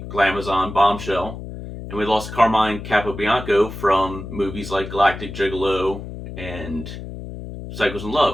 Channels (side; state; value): left; noise; hum, 10 dB below the sound